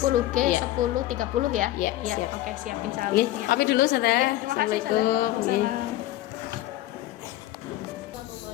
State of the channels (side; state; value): right; quieter; 15.2 dB